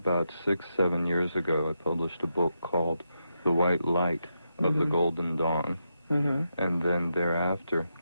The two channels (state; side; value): inverted; both; correlation -0.85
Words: 6-7 years ago, I published a book called The White Light of the Golden Dawn. And then thereafter,